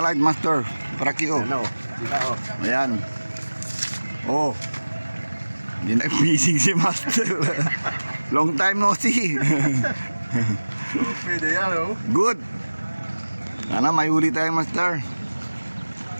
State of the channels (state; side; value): inverted; both; correlation -1.00